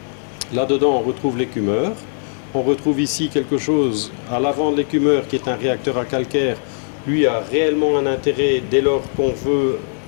Là-dedans on retrouve l'écumeur. On retrouve ici quelque chose à l'avant de l'écumeur qui est un réacteur à calcaire. Lui a réellement un intérêt dès lors qu'on veut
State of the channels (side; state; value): right; silent; digital silence